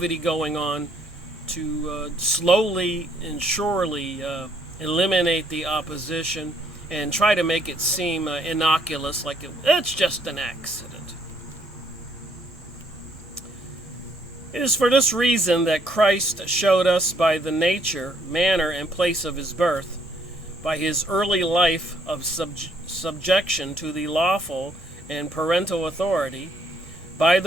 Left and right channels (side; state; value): both; normal; correlation 0.67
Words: going on to slowly and surely eliminate the opposition and try to make it seem innocuous, like it's just an accident. It is for this reason that Christ showed us by the nature, manner, and place of his birth, by his early life of subjection to the lawful and parental authority, by